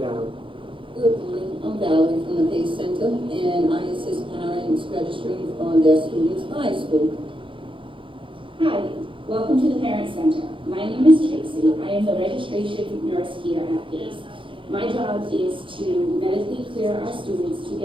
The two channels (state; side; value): late; left; 0.25 ms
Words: Good morning, I'm Valerie from the PACE Center, and I assist parents registering on their students' high school. Hi, welcome to the Parent Center. My name is Tracy. I am the registration nurse here at PACE. My job is to medically clear our students to